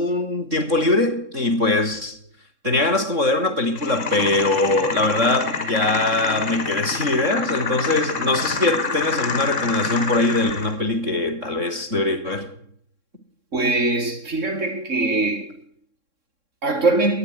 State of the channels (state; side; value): late; left; 3.6 ms